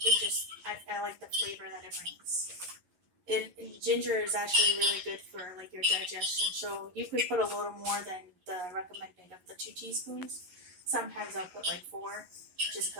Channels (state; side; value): late; left; 11 ms